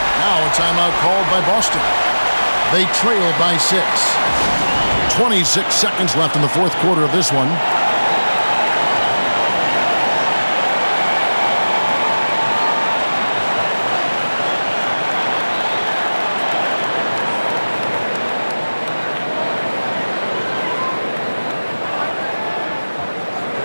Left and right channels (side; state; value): both; inverted; correlation -1.00